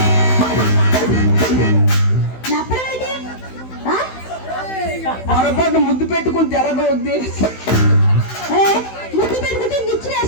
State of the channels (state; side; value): late; right; 16 ms